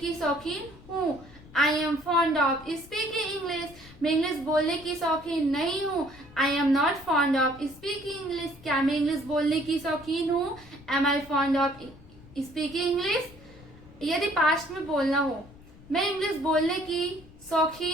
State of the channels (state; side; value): noise; left; rumble, 21 dB below the sound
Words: शौकीन हूँ। I am fond of speaking English. मैं इंग्लिश बोलने की शौकीन नहीं हूँ। I am not fond of speaking English. क्या मैं इंग्लिश बोलने की शौकीन हूँ? Am I fond of speaking English. यदि पास्ट में बोलना हो, मैं इंग्लिश बोलने की